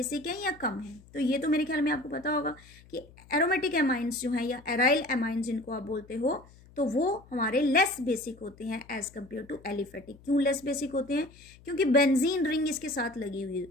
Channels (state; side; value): noise; left; hum, 24 dB below the sound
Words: हैं या कम हैं। तो ये तो मेरे ख्याल में आपको पता होगा कि एरोमेटिक अमाइंस जो हैं या एराइल अमाइंस जिनको आप बोलते हो, तो वो हमारे लेस बेसिक होते हैं एज कम्पेयर टू एलिफेटिक। क्यों लेस बेसिक होते हैं, क्योंकि बेंजीन रिंग इसके साथ लगी हुई